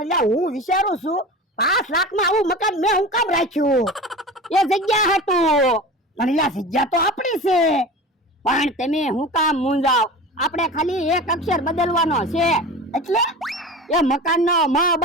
લા હું વિચારું છું 5 લાખમાં આવું મકાન મેં હું કામ રાખ્યું? એ જગ્યા હતું. પણ લા જગ્યા તો આપણી છે. પણ તમે હું કામ મૂંઝાવ? આપણે ખાલી એક અક્ષર બદલવાનો છે. એટલે એ મકાનનો મ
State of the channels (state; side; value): normal; both; correlation 0.33